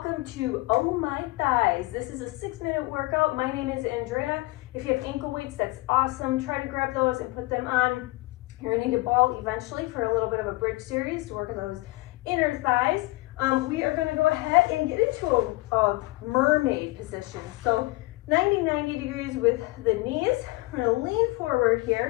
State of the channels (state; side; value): quieter; right; 21.9 dB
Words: to Oh My Thighs. This is a 6-minute workout. My name is Andrea. If you have ankle weights, that's awesome. Try to grab those and put them on. You're gonna need a ball eventually for a little bit of a bridge series to work on those inner thighs. We are gonna go ahead and get into a mermaid position. So 90 degrees with the knees. We're gonna lean forward